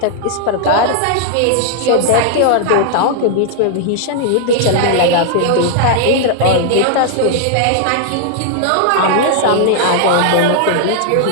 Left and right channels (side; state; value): both; different; correlation 0.00